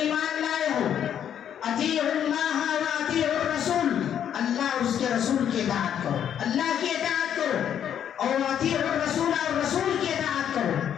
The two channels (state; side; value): quieter; right; 9.4 dB